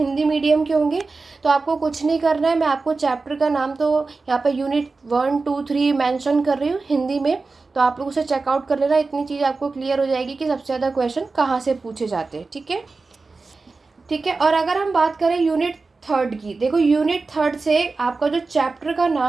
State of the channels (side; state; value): left; quieter; 3.9 dB